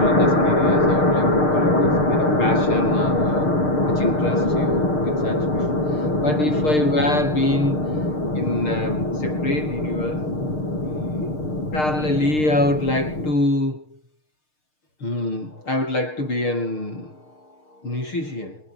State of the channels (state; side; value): late; right; 6.6 ms